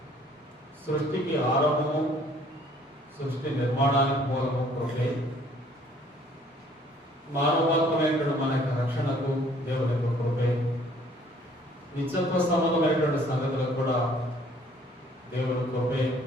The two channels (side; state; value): both; normal; correlation 0.58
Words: సృష్టికి ఆరంభము, సృష్టి నిర్మాణానికి మూలము కృపే. మానవాత్మైనటువంటి మన యొక్క రక్షణకు దేవుడి యొక్క కృపే. నిత్యత్వ సంబంధమైనటువంటి సంగతులకు కూడా దేవుడి కృపే